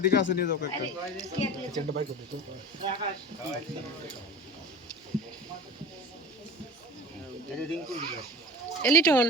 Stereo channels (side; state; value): both; normal; correlation 0.36